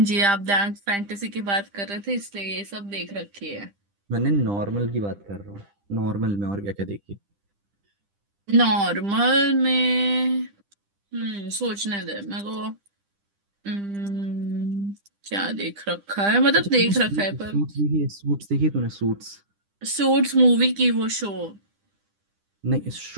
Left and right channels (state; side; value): late; left; 10 ms